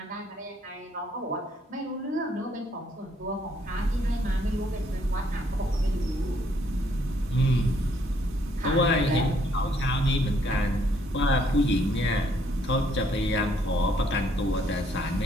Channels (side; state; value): both; normal; correlation 0.68